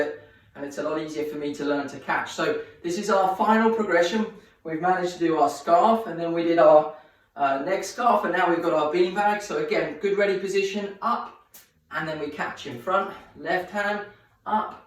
and it's a lot easier for me to learn to catch. So this is our final progression. We've managed to do our scarf and then we did our next scarf and now we've got our beanbag. So again, good ready position, up, and then we catch in front, left hand, up,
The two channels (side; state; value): both; identical; correlation 1.00